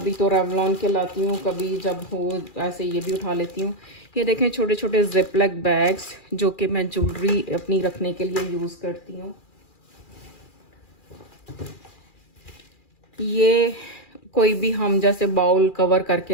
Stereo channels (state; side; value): late; right; 2.4 ms